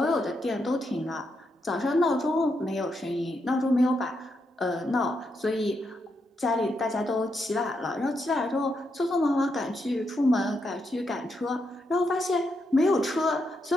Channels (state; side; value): normal; both; correlation 0.81